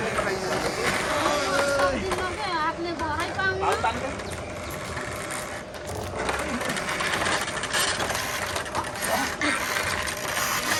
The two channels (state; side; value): identical; both; correlation 1.00